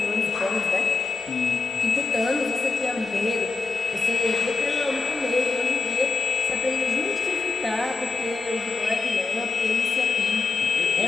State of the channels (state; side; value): quieter; right; 4.1 dB